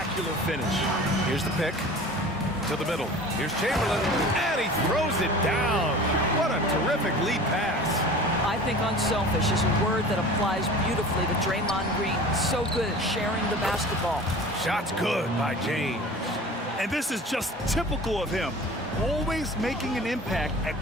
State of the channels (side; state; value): both; normal; correlation 0.40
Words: finish. Here's the pick. To the middle. Here's Chamberlain, and he throws it down. What a terrific lead pass. I think unselfish is a word that applies beautifully to Draymond Green. So good at sharing the basketball. Shot's good by James. And this is just typical of him. Always making an impact at